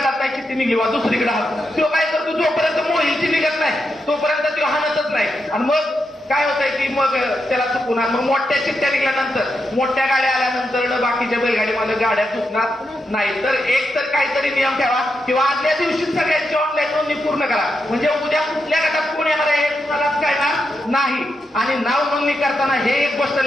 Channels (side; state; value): both; normal; correlation 0.85